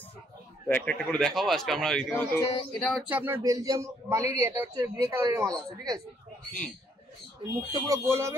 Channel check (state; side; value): normal; both; correlation 0.68